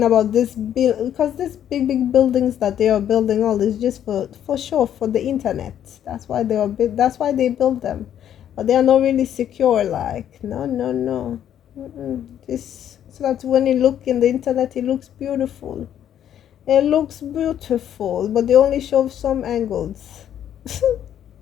about this because this big buildings that they are building all is just for sure for the internet. That's why that's why they build them, but they are not really secure. Like, no. Just so that when you look in the internet, it looks beautiful. It looks beautiful, but they only show some angles.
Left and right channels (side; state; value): right; quieter; 10.2 dB